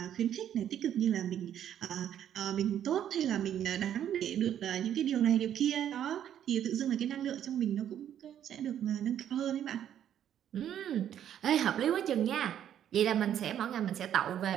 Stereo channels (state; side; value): quieter; left; 10.2 dB